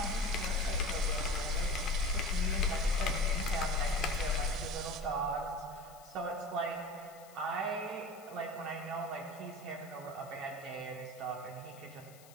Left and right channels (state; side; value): noise; left; hiss, 22 dB below the sound